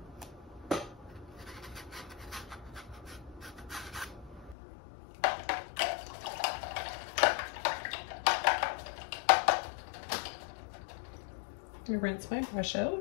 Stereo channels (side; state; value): right; drops out; at 4.5 s